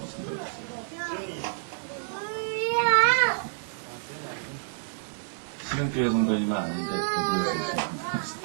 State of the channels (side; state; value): left; silent; digital silence